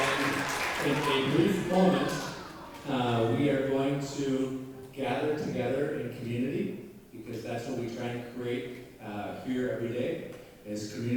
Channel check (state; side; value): identical; both; correlation 1.00